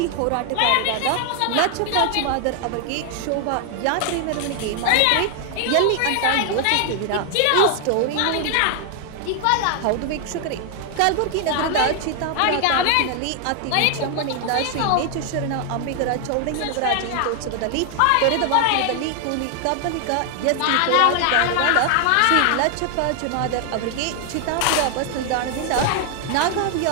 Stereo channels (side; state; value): both; different; correlation 0.00